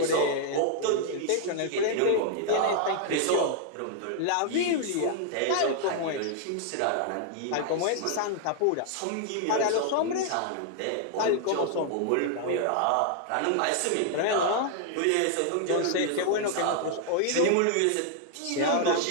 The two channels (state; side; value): different; both; correlation -0.01